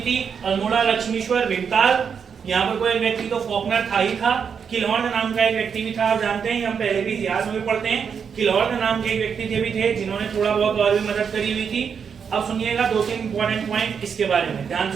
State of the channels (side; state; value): left; quieter; 6.7 dB